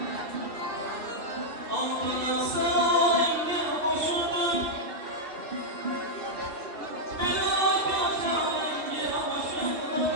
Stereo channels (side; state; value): left; late; 2.9 ms